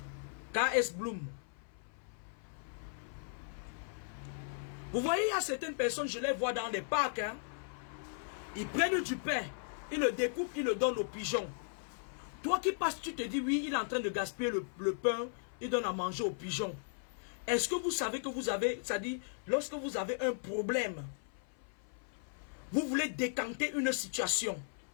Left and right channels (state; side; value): silent; right; 53 dB below the other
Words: KS Bloom. Vous voyez, il y a certaines personnes, je les vois dans les parcs. Hein, ils prennent du pain, ils le découpent, ils le donnent aux pigeons. Toi qui passes, tu te dis, oui, il est en train de gaspiller le pain, il donne à manger aux pigeons. Est-ce que vous savez que vous avez, c'est-à-dire, lorsque vous avez un problème, vous voulez décanter une situation,